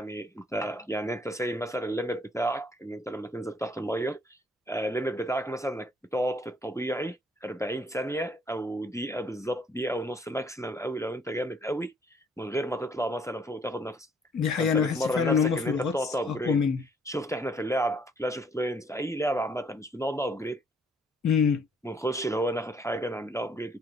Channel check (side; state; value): both; normal; correlation 0.62